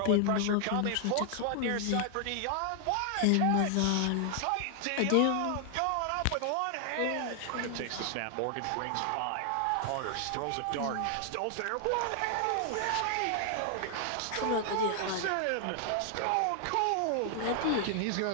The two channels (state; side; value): different; both; correlation 0.00